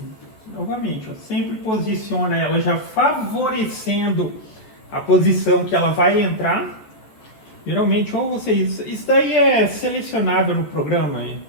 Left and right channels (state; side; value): late; right; 14 ms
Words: Novamente, ó, sempre posiciona ela já favorecendo a posição que ela vai entrar. Geralmente, ou vocês... Isso daí é selecionável no programa,